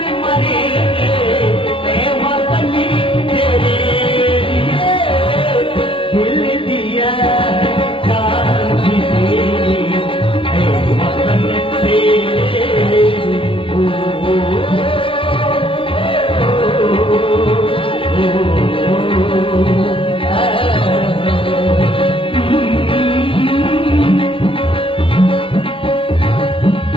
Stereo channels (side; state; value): right; late; 0.25 ms